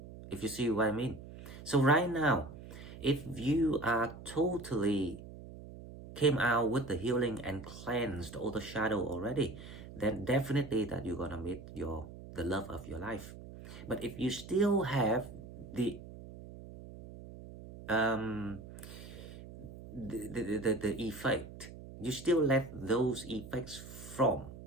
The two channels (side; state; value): right; noise; hum, 14 dB below the sound